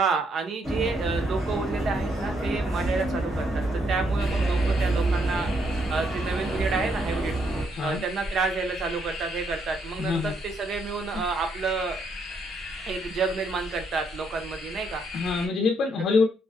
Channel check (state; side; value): normal; both; correlation 0.74